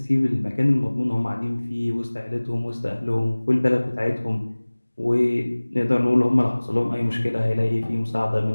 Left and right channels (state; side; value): inverted; both; correlation -1.00